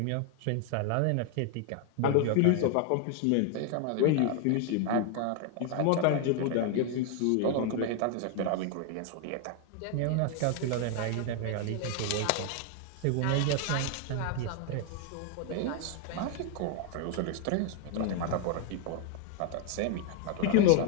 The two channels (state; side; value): different; both; correlation 0.00